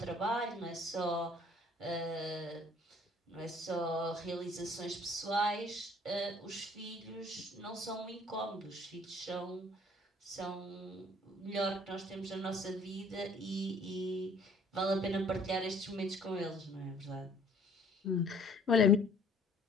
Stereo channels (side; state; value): both; normal; correlation 0.56